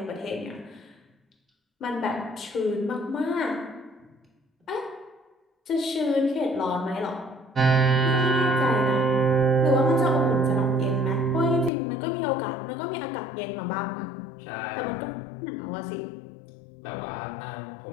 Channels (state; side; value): drops out; right; at 11.7 s